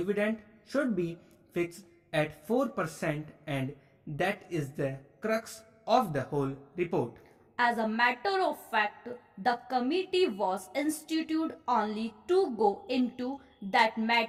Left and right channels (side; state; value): both; identical; correlation 1.00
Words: should be fixed at 4%, and that is the crux of the whole report. As a matter of fact, the committee was instituted only to go into that